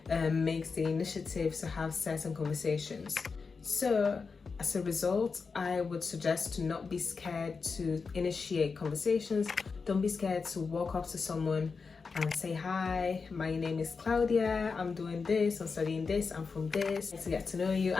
makes the initiative to have certain conversations. So as a result, I would suggest to not be scared to initiate conversations. Don't be scared to walk up to someone and say, hi, my name is Claudia, I'm doing this, I'm studying this, I'm from this, to get to know you.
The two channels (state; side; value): quieter; right; 4.9 dB